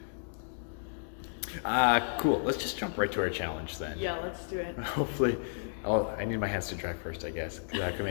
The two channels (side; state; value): right; silent; digital silence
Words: Cool. Let's just jump right to our challenge then. Yeah, let's do it. Hopefully. Oh, I need my hands to dry first, I guess, because that can